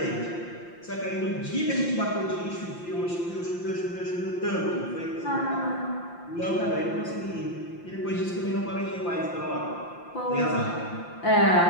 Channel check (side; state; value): right; late; 5.8 ms